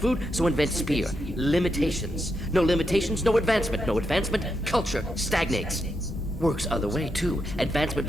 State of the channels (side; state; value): both; normal; correlation 0.83